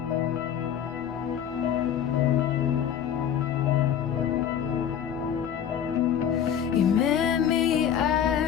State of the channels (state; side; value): quieter; right; 9.1 dB